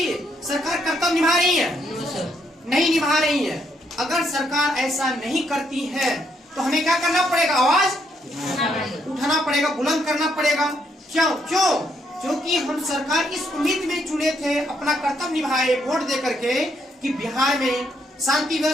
सरकार कर्तव्य निभा रही है, नहीं निभा रही है। अगर सरकार ऐसा नहीं करती है तो हमें क्या करना पड़ेगा, आवाज उठाना पड़ेगा, बुलंद करना पड़ेगा। क्यों, क्योंकि हम सरकार इस उम्मीद में चुने थे, अपना कर्तव्य निभाए वोट दे करके, कि बिहार में शांति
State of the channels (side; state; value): both; normal; correlation 0.74